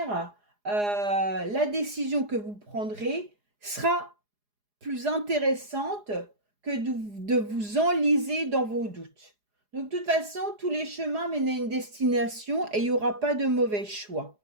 la décision que vous prendrez sera plus intéressante que de vous enliser dans vos doutes. Donc, de toute façon, tous les chemins mènent à une destination et il n'y aura pas de mauvais choix.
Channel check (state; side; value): late; left; 4.8 ms